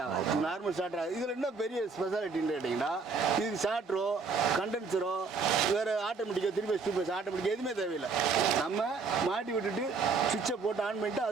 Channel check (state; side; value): quieter; left; 4.6 dB